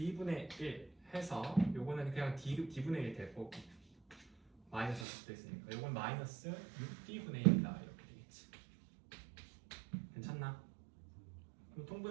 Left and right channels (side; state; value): left; drops out; at 5.1 s